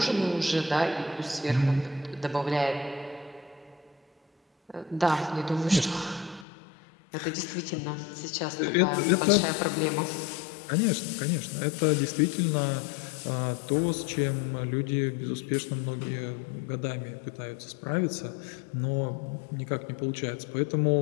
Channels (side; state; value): right; drops out; at 6.5 s